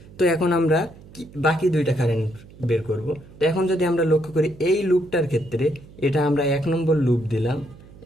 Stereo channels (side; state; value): right; noise; hum, 21 dB below the sound